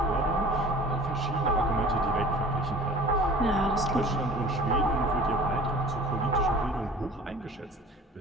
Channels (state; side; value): normal; both; correlation 0.45